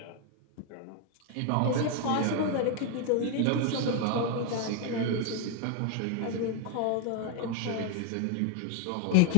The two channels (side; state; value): both; different; correlation 0.00